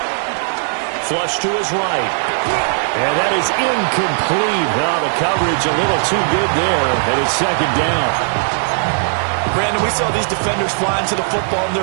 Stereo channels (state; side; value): silent; left; digital silence